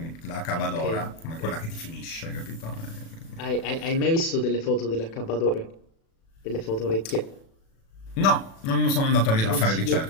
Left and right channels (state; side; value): late; right; 36 ms